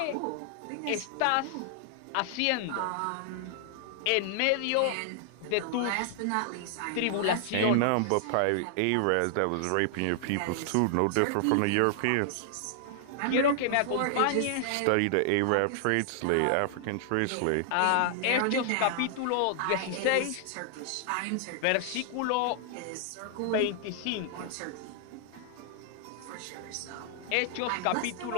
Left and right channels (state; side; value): different; both; correlation 0.00